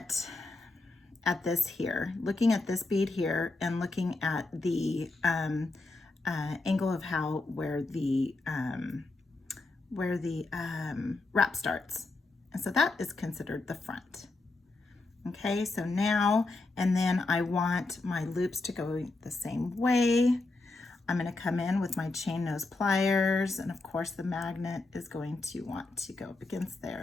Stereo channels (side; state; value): right; quieter; 3.2 dB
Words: this here, looking at this bead here, and looking at the angle of where the wrap starts. And so that is considered the front. Okay, so now, and then I want my loops to go the same way. I'm going to come in with my chain nose pliers, and of course the magnet is going to want to go up against